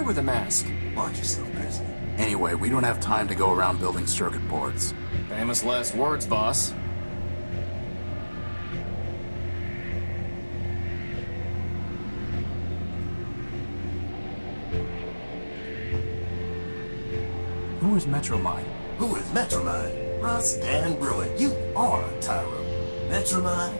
with a mask. Watch yourself, Chris. Anyway, we don't have time to go around building circuit boards. Famous last words, boss. Who is Metromine? Who is Metromine? Russ Dan Bruin, you are a Tyro. Metromine?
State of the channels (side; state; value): both; inverted; correlation -1.00